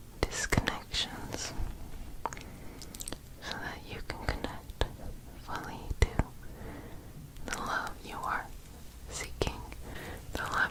disconnections so that you can connect fully to the love you are seeking. The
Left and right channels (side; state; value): both; identical; correlation 1.00